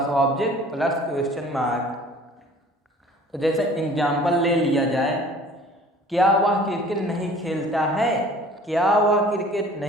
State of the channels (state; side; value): normal; both; correlation 0.49